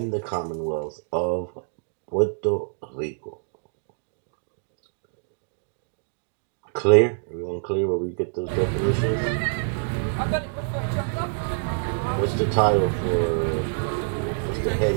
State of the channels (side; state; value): left; silent; digital silence